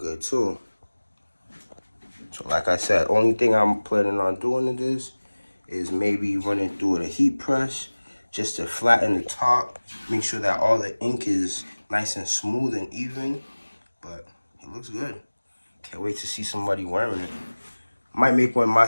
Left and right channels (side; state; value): both; inverted; correlation -1.00